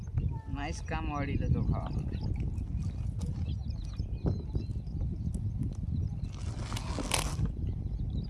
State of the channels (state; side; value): identical; both; correlation 1.00